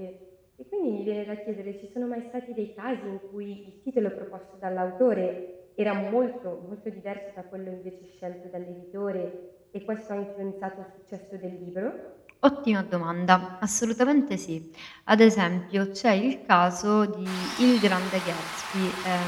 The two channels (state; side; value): identical; both; correlation 1.00